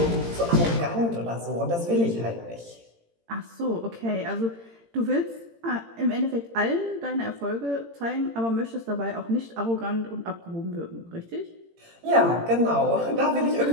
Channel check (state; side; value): late; left; 18 ms